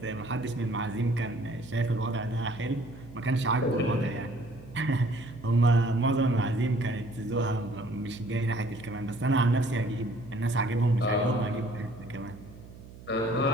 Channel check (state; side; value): noise; right; hum, 17 dB below the sound